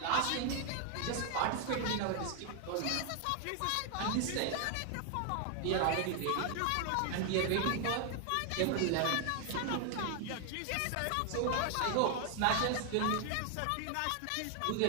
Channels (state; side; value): different; both; correlation 0.00